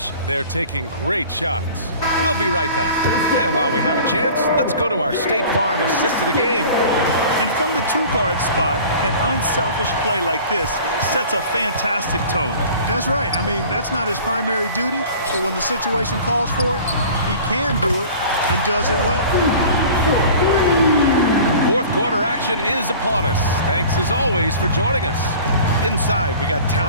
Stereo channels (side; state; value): both; inverted; correlation -0.43